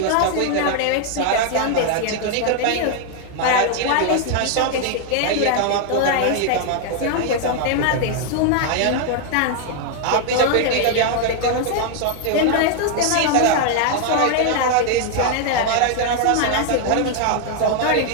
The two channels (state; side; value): different; both; correlation 0.00